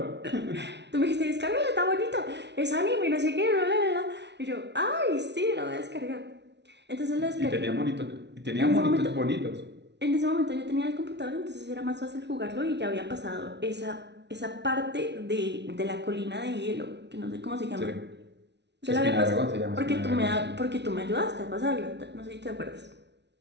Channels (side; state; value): left; late; 0.50 ms